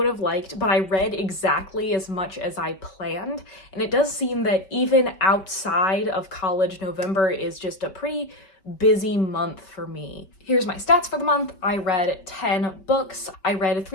have liked, but I read exactly as much as I planned. And it does seem that even outside of college, November is just a pretty busy month for me. Here's my stats for the month. I read 10 books. I read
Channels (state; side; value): late; right; 5.2 ms